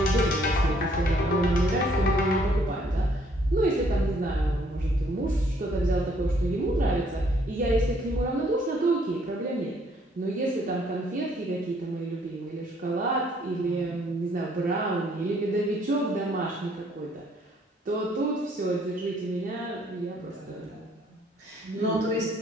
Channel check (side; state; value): both; normal; correlation 0.64